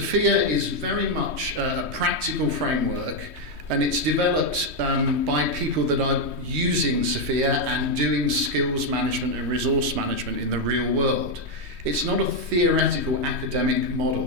is very much a practical framework, and it's developed by people that are using SFIA and doing skills management and resource management in the real world. It's not a theoretical academic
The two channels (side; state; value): left; late; 3.2 ms